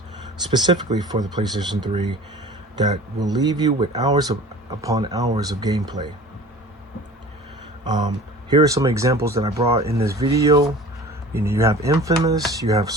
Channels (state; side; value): normal; both; correlation 0.41